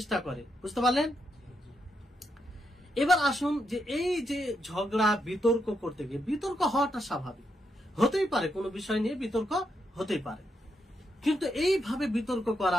করে। বুঝতে পারলেন? এবার আসুন যে এই যে ঝগড়া বিতর্ক করতে গিয়ে, বিতর্ক হওয়াটা স্বাভাবিক, হতেই পারে, কোনো বিষয় নিয়ে বিতর্ক হতেই পারে, কিন্তু এইভাবে বিতর্ক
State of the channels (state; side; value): normal; both; correlation 0.81